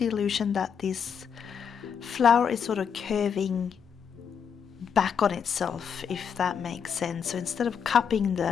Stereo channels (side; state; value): right; quieter; 7.2 dB